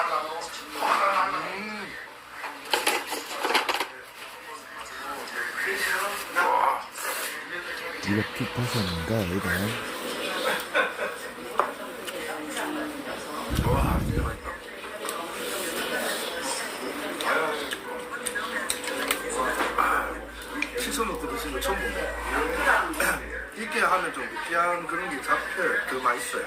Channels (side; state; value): both; identical; correlation 1.00